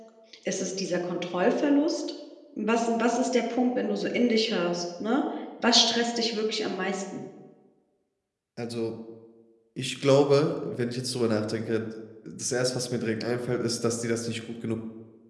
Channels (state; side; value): identical; both; correlation 1.00